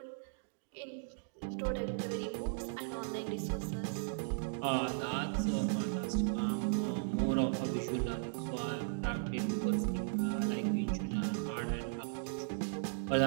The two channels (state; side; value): silent; left; digital silence